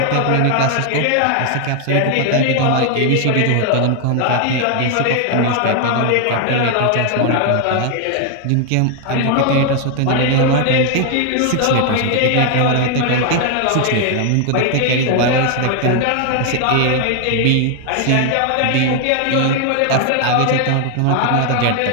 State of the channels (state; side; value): different; both; correlation 0.00